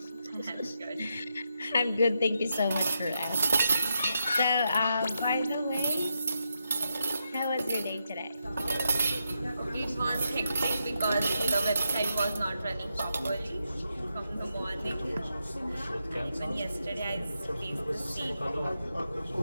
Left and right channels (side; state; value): both; inverted; correlation -0.84